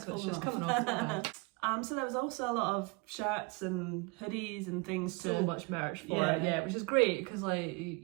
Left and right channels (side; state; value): left; quieter; 27.7 dB